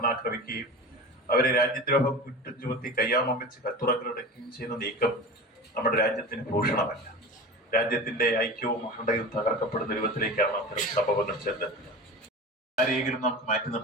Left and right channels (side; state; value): both; normal; correlation 0.32